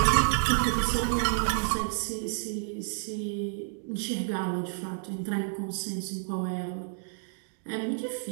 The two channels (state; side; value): silent; left; digital silence